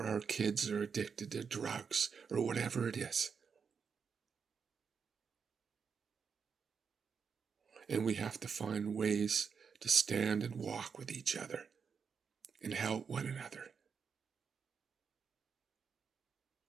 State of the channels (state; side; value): quieter; left; 6.1 dB